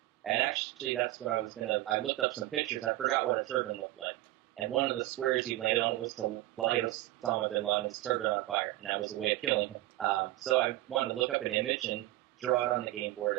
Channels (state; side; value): quieter; left; 16.8 dB